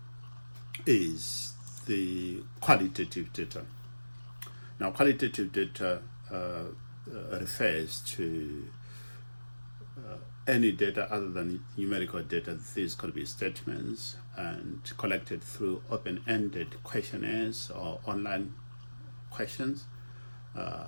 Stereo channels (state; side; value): inverted; both; correlation -1.00